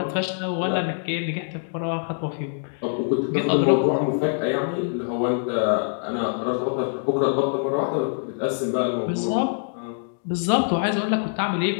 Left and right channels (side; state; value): right; silent; digital silence